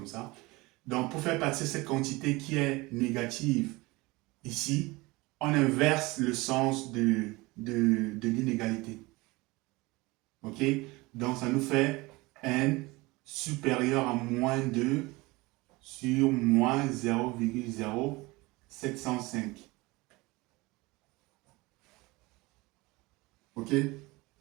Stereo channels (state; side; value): quieter; left; 22.6 dB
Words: ça. Donc, pour faire passer cette quantité qui est négative ici, on inverse le sens de l'inégalité. OK? Donc, ça nous fait n supérieur à moins 2 sur moins 0,0705. OK?